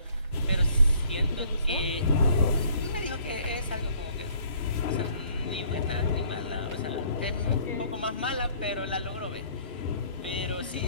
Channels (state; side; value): inverted; both; correlation -0.58